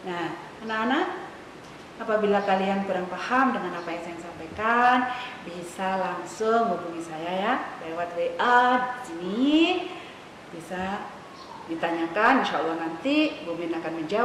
Nah, anak-anak, apabila kalian kurang paham dengan apa yang saya sampaikan, bisa langsung hubungi saya ya lewat WA di sini. Bisa ditanyakan, insya Allah nanti Bu Min akan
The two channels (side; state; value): both; identical; correlation 1.00